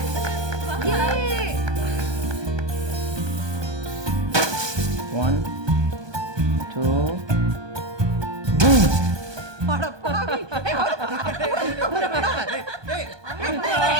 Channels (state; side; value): late; left; 1.2 ms